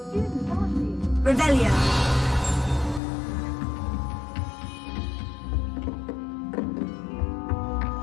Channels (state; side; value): drops out; right; at 3.0 s